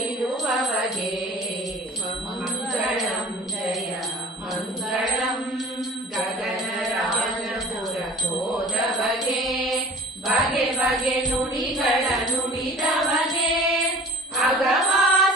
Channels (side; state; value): both; normal; correlation 0.44